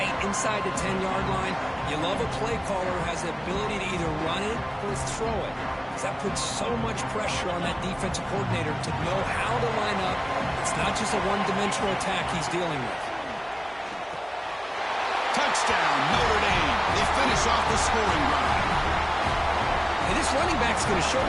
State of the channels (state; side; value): identical; both; correlation 1.00